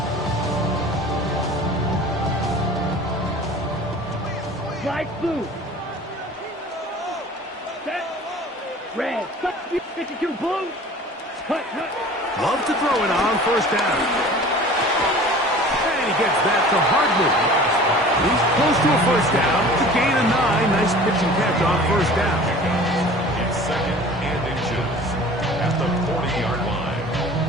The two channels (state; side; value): normal; both; correlation 0.44